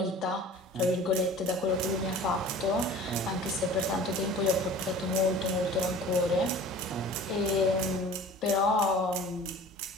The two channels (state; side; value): normal; both; correlation 0.43